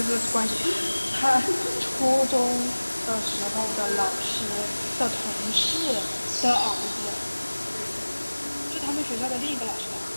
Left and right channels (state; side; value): inverted; both; correlation -1.00